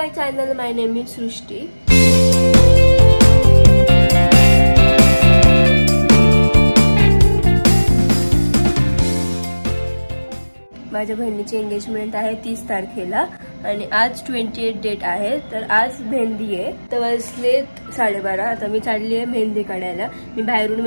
channel. My name is Srushti. माझ्या बहिणीची engagement आहे 30 तारखेला आणि आज 28 डेट आहे. तर आज मेहंदी आहे. तर वाजले 12:30. आता मी चालली आहे मेहंदी काढायला. मी बाहेरून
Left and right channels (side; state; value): both; inverted; correlation -1.00